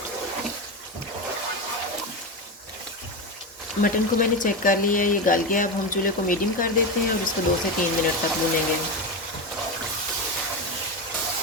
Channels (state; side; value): normal; both; correlation 0.17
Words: मटन को मैंने चेक कर लिया है, ये गल गया। अब हम चूल्हे को मीडियम कर देते हैं और इसको 2 से 3 मिनट तक भूनेंगे।